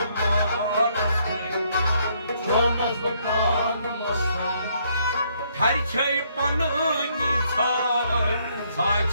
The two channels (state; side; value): inverted; both; correlation -0.70